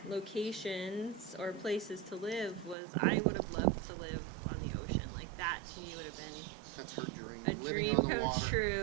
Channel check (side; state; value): left; drops out; at 2.8 s